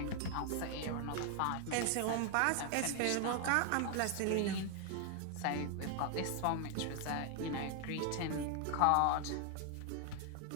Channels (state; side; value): different; both; correlation 0.00